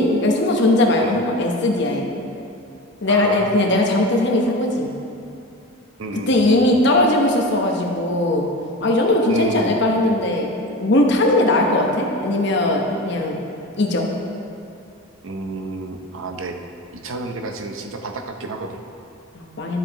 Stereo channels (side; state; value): both; normal; correlation 0.29